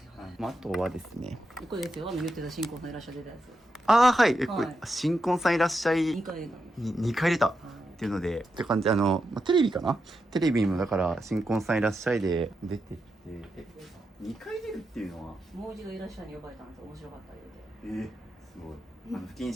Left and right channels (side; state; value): both; normal; correlation 0.86